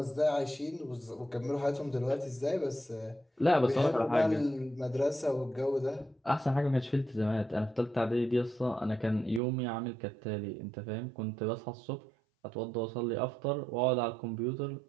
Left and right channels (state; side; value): drops out; left; at 9.4 s